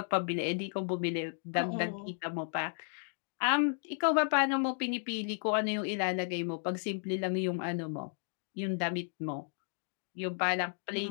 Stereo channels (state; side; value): silent; right; 55 dB below the other